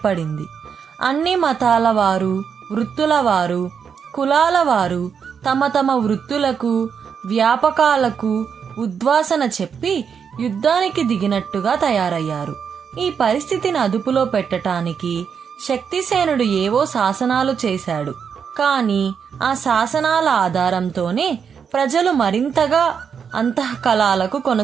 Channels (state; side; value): quieter; left; 6.9 dB